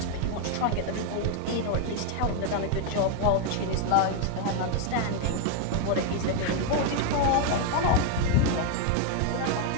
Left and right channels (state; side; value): different; both; correlation 0.00